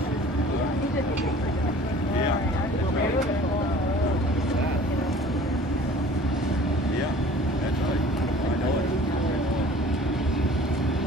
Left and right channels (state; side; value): normal; both; correlation 0.47